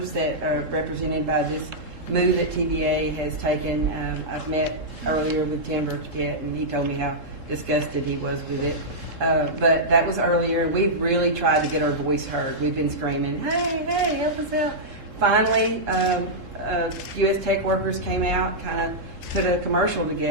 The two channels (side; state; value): left; late; 3.7 ms